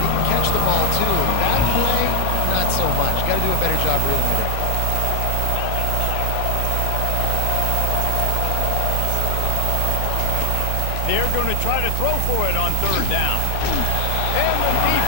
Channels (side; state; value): both; different; correlation 0.00